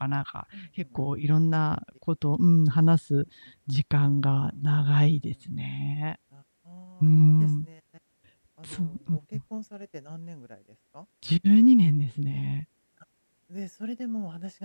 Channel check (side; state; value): both; inverted; correlation -1.00